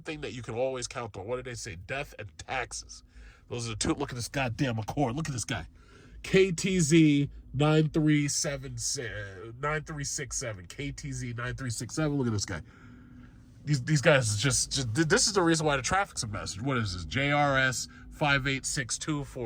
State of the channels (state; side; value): identical; both; correlation 1.00